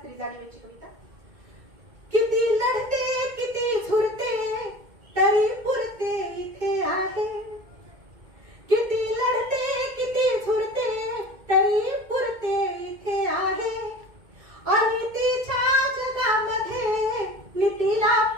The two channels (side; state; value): left; late; 2.2 ms